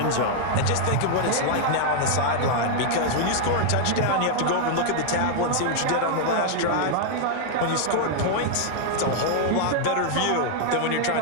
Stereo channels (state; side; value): different; both; correlation 0.00